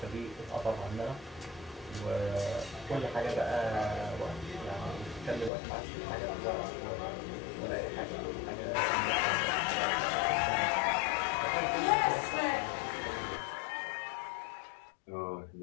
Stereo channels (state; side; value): drops out; right; at 5.5 s